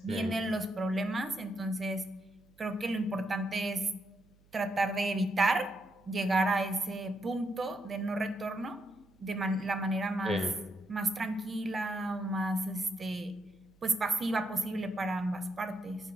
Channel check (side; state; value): right; noise; hum, 30 dB below the sound